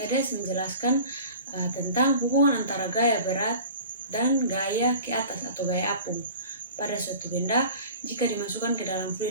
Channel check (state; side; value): inverted; both; correlation -0.41